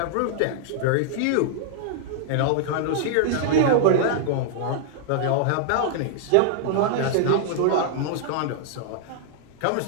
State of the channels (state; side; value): different; both; correlation -0.01